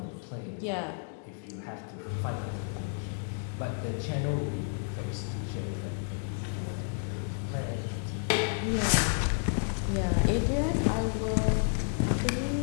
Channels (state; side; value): silent; right; 57 dB below the other